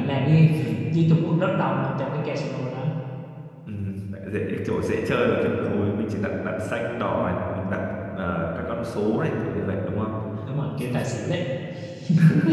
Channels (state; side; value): identical; both; correlation 1.00